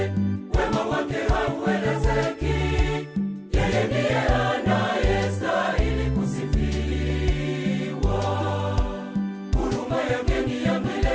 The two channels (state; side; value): identical; both; correlation 1.00